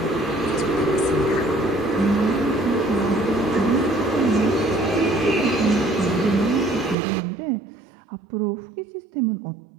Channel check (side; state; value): left; drops out; at 7.0 s